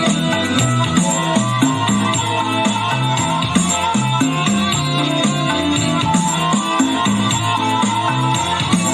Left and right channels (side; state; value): both; identical; correlation 1.00